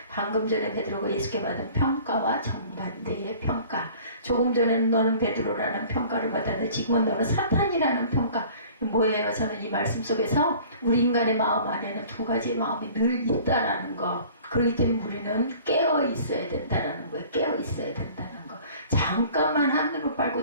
방금 전에 베드로가 예수께 받은 평가와 정반대의 평가. 조금 전에는 너는 베드로라는 평가를 받았는데 지금은 너는 사탄이라는 평가. 뭐예요? 저는 이 말씀 속에서 우리 인간의 마음 안에는 두 가지의 마음이 늘 있다라는 거. 그렇기 때문에 우리는 깨어 있어야 된다라는 거예요. 깨어 있어야 된다는 거. 잠깐만 하늘을 빨고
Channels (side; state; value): both; inverted; correlation -0.48